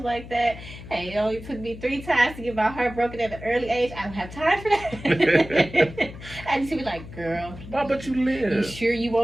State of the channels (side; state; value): left; noise; hum, 14 dB below the sound